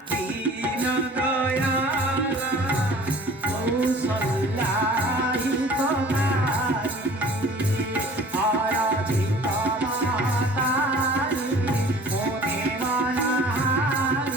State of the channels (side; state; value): both; normal; correlation 0.47